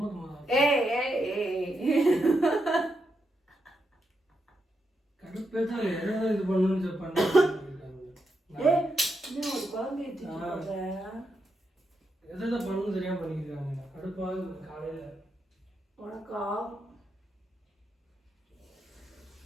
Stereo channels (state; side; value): normal; both; correlation 0.83